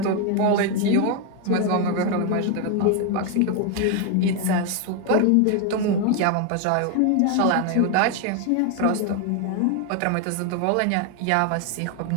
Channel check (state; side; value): different; both; correlation 0.01